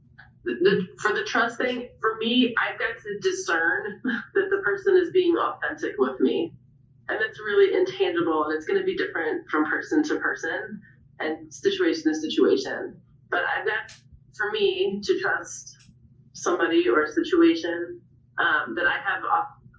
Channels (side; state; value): both; identical; correlation 1.00